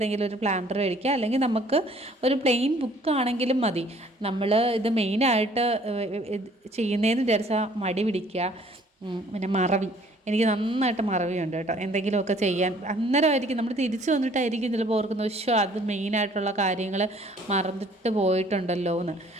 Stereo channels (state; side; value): normal; both; correlation 0.57